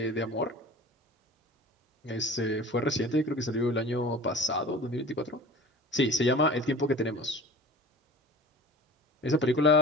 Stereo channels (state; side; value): normal; both; correlation 0.39